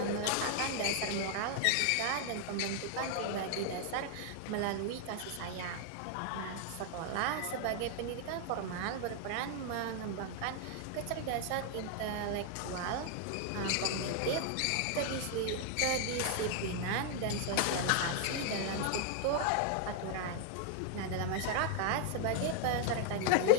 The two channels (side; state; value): both; different; correlation 0.00